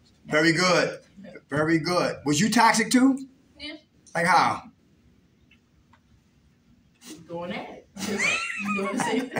Very good. Very good. Was you toxic too? Yeah. Like how? Going at it. Doing the same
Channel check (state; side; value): identical; both; correlation 1.00